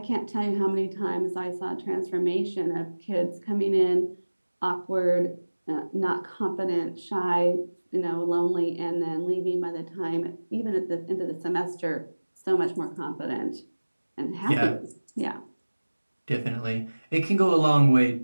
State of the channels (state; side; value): inverted; both; correlation -1.00